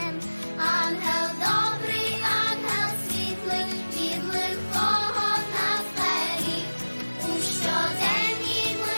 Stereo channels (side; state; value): both; inverted; correlation -1.00